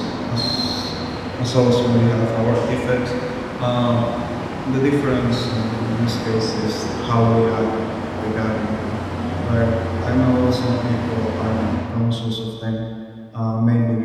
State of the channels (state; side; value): identical; both; correlation 1.00